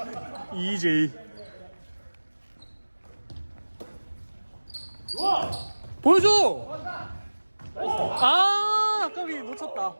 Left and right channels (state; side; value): inverted; both; correlation -1.00